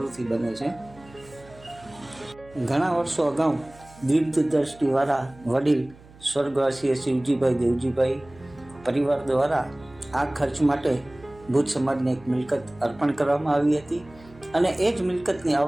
બને છે। ઘણા વર્ષો અગાઉ દીર્ઘદ્રષ્ટિવાળા વડીલ સ્વર્ગવાસી શિવજીભાઈ દેવજીભાઈ પરિવાર દ્વારા આ ખર્ચ માટે ભુજ સમાજને એક મિલકત અર્પણ કરવામાં આવી હતી અને એ જ મિલકતની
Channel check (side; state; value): right; noise; hum, 23 dB below the sound